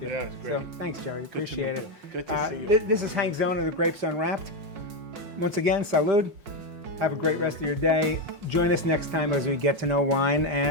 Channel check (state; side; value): late; left; 5.5 ms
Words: you. Yeah, it's great. So thanks, Jerry. Appreciate it. Good to see you. This is Hank Zona, the Grapes Unwrapped. Once again, salud. Have a great rest of your day. Join us next time as we get to know wine